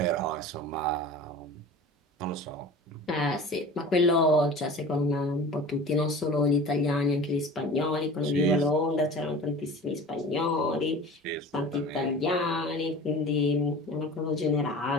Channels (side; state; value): both; normal; correlation 0.38